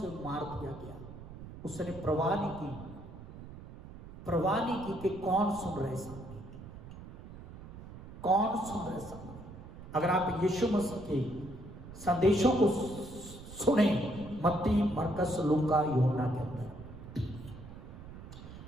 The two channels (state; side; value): noise; right; rumble, 14 dB below the sound